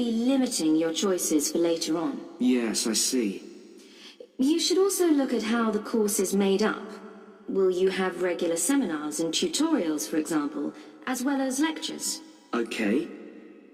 limiting your choices for later on. Yes, I see. You should also look at how the course is made up. Will you have regular seminars and tutorials, for example, as well as lectures? Okay.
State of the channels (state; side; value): identical; both; correlation 1.00